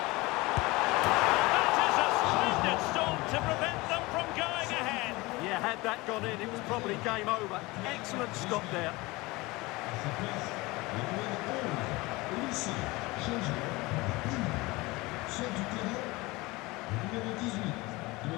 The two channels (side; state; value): right; quieter; 22.3 dB